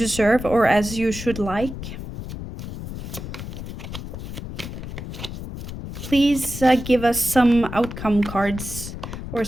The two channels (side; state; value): left; noise; rumble, 9 dB below the sound